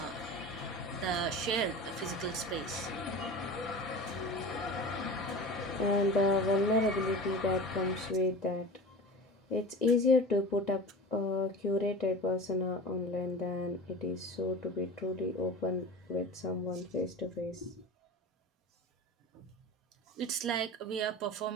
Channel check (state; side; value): normal; both; correlation 0.34